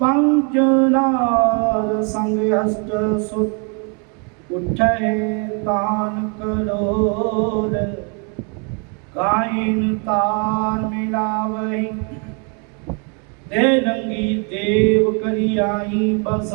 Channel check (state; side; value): quieter; left; 36.8 dB